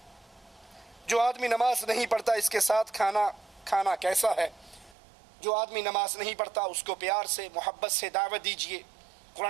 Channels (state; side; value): drops out; left; at 5.0 s